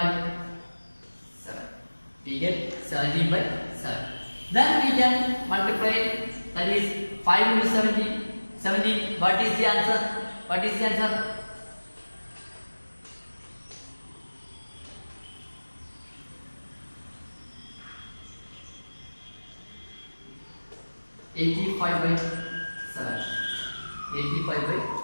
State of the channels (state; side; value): inverted; both; correlation -1.00